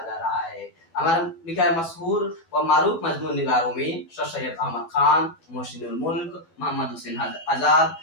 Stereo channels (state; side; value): late; right; 12 ms